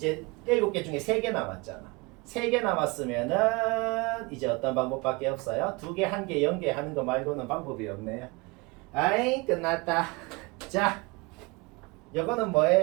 7개 중에 3개 남았잖아. 3개 남았으면은 이제 어떤 방법밖에 없어요? 2개, 1개, 0개 하는 거 말고는 방법이 없네요. 아이, 끝났다. 자, 이거는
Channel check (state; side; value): quieter; left; 26.5 dB